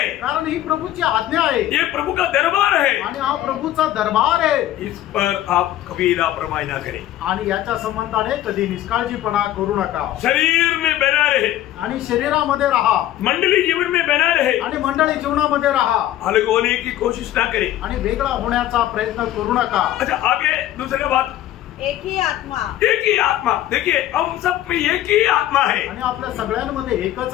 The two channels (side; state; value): right; quieter; 13.3 dB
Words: कारण ही प्रभूची आज्ञा आहे. ये प्रभु का दरबार है. आणि हा प्रभूचा दरबार आहे. इस पर आप कभी लापरवाही ना करें. आणि याच्या संबंधाने कधी निष्काळजीपणा करू नका. शरीर में बना रहे. आणि शरीरामध्ये राहा. मंडली जीवन में बना रहे. आणि मंडळी जीवनामध्ये राहा. अलग होने की कोशिश ना करें. आणि वेगळा होण्याचा प्रयत्न करू नका. अच्छा, आगे दूसरी बात, एक ही आत्मा. एक ही आत्मा. देखिए हम सब में एक ही आत्मा है. आणि आपल्या सगळ्यांमध्ये एकच